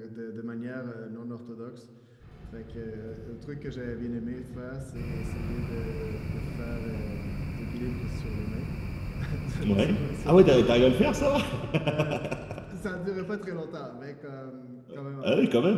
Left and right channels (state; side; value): identical; both; correlation 1.00